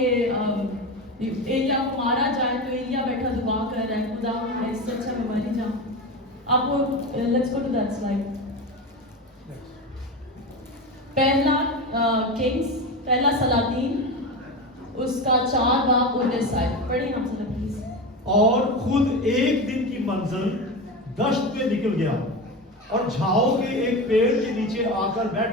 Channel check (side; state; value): both; normal; correlation 0.22